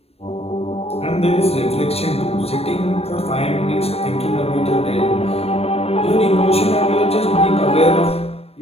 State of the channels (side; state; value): right; late; 0.29 ms